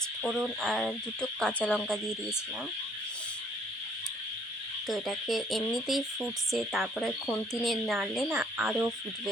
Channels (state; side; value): normal; both; correlation 0.63